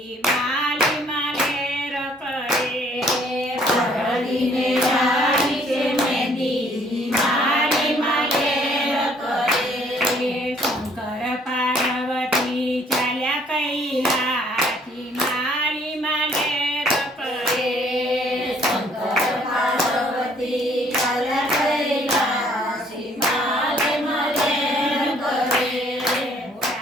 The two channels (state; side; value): normal; both; correlation 0.61